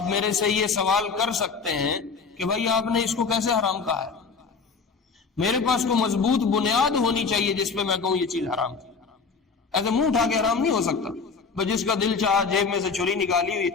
میرے سے یہ سوال کر سکتے ہیں کہ بھائی آپ نے اس کو کیسے حرام کہا ہے. میرے پاس کو مضبوط بنیاد ہونی چاہیے جس پہ میں کہوں یہ چیز حرام ہے. ایسے منہ اٹھا کے حرام نہیں ہو سکتا، بس جس کا دل چاہا جیب میں سے چھری نکالی ہوئی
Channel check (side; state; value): right; quieter; 5.0 dB